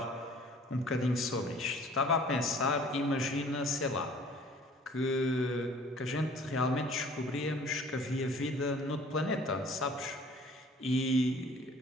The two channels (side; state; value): both; normal; correlation 0.52